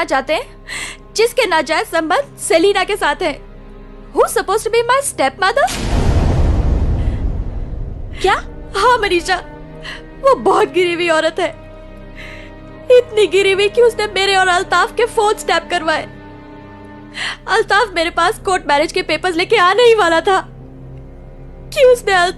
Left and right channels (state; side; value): identical; both; correlation 1.00